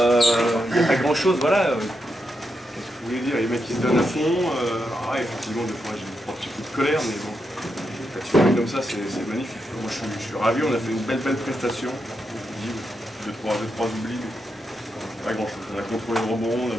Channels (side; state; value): both; normal; correlation 0.84